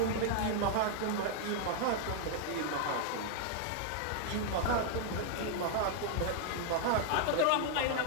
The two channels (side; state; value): both; different; correlation 0.00